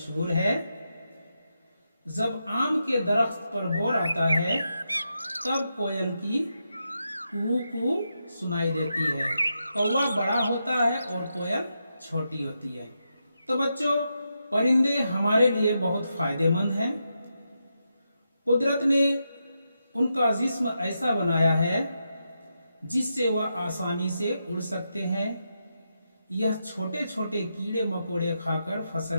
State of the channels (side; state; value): both; inverted; correlation -0.85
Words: है। जब आम के दरख्त पर बोर आता है, तब कोयल की कू कू सुनाई देती है। कौवा बड़ा होता है और कोयल छोटी होती है। तो बच्चों, परिंदे हमारे लिए बहुत फायदेमंद हैं। कुदरत ने उनका जिस्म ऐसा बनाया है जिससे वह आसानी से उड़ सकते हैं। यह छोटे छोटे कीड़े मकोड़े खाकर